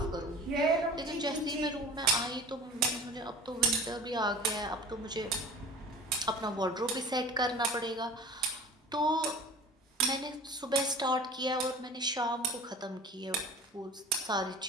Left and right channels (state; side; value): normal; both; correlation 0.41